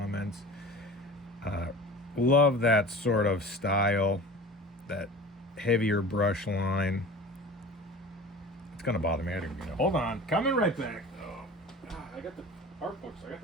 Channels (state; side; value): normal; both; correlation 0.38